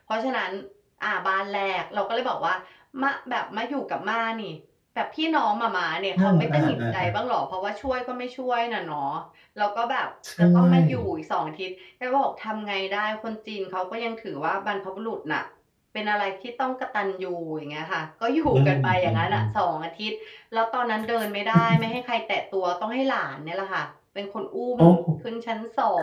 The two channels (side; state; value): both; identical; correlation 1.00